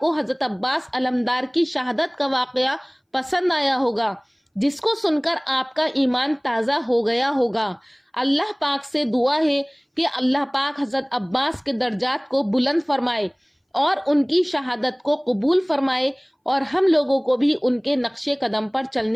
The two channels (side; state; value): both; identical; correlation 1.00